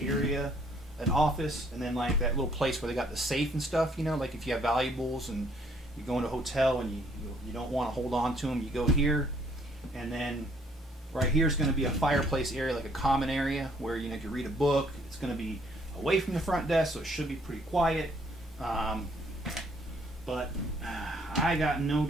area, an office, and then like that little place where they got the safe and stuff, you know, like if you have valuables and you go into a hotel and you don't want to hold on to them, you go here. And then right here is going to be a fireplace area, like a common area where, you know, if you read a book, it's going to be away from the front desk, so it should be pretty quiet. But I got no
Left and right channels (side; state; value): both; normal; correlation 0.64